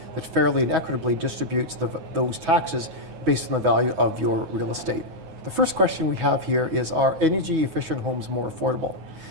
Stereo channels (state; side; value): late; left; 9.4 ms